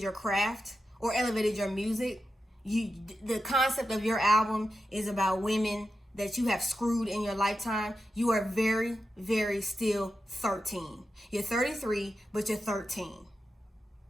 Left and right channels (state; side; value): normal; both; correlation 0.90